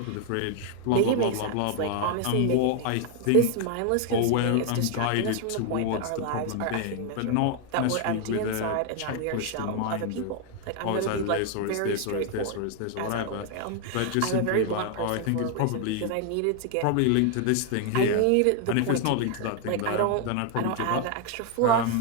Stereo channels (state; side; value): different; both; correlation 0.00